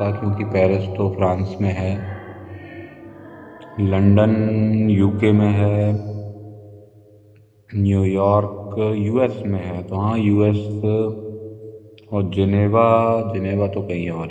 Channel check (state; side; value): identical; both; correlation 1.00